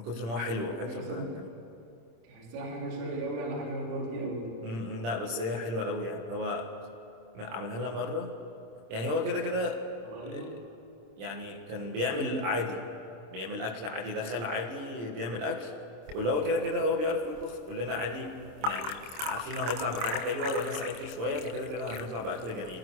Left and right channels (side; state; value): left; late; 26 ms